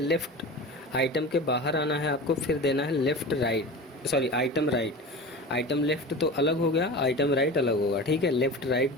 आइटम के बाहर आना है आपको, फिर देना है left right, sorry item right. Item left तो अलग हो गया, आइटम राइट अलग होगा, ठीक है। लेफ्ट राइट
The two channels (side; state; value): both; normal; correlation 0.32